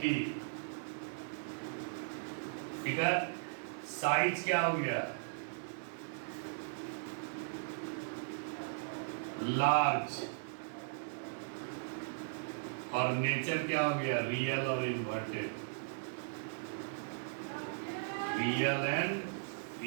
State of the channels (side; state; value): left; silent; digital silence